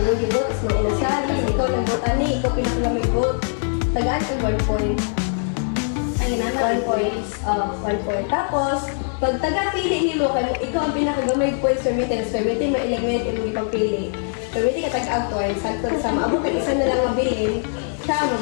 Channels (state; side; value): silent; right; digital silence